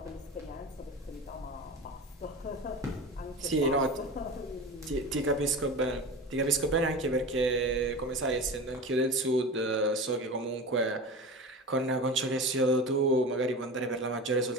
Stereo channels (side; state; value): both; normal; correlation 0.30